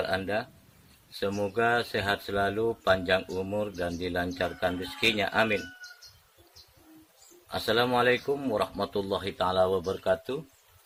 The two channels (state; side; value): identical; both; correlation 1.00